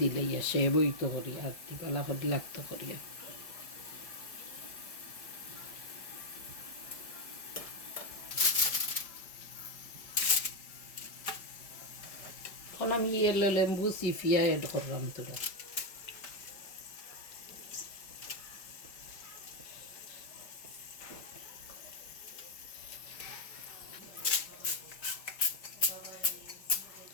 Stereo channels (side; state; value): right; late; 5.1 ms